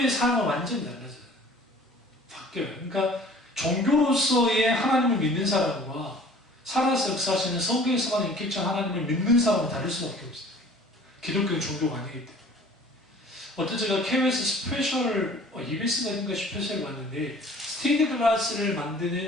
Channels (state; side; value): normal; both; correlation 0.49